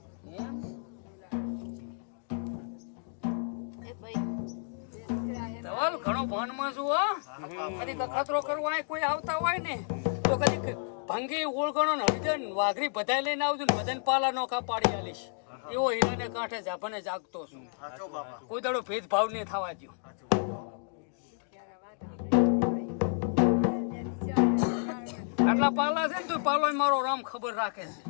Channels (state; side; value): silent; right; digital silence